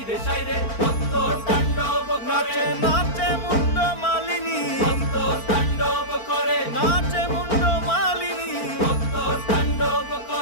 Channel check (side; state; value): right; late; 4.4 ms